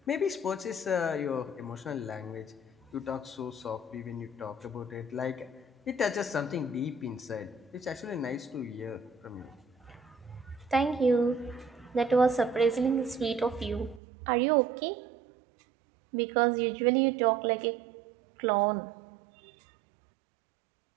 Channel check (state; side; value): drops out; left; at 14.0 s